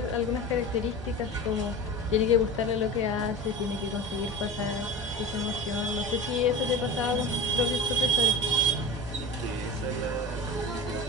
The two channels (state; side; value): normal; both; correlation 0.31